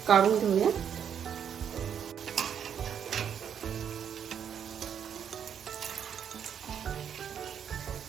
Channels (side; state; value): left; quieter; 8.3 dB